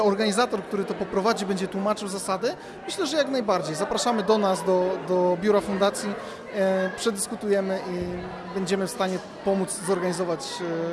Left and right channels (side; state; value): both; identical; correlation 1.00